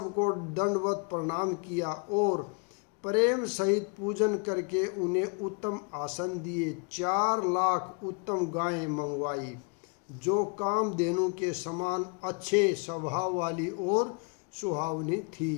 दंडवत प्रणाम किया और प्रेम सहित पूजन करके उन्हें उत्तम आसन दिए। 4 लाख उत्तम गायें मंगवाई, जो कामधेनु के समान अच्छे स्वभाव वाली और सुहावनी थी।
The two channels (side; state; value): right; quieter; 34.1 dB